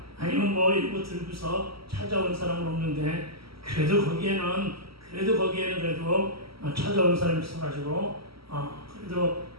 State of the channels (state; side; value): late; left; 0.75 ms